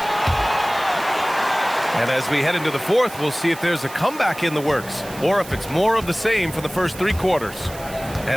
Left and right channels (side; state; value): right; noise; hiss, 16 dB below the sound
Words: And as we head into the 4th, we'll see if there's a comeback in the works or if it's more of the same for the first 3 quarters.